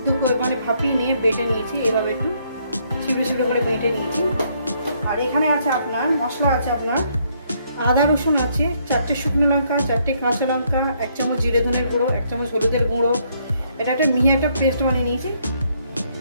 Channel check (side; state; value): both; inverted; correlation -0.70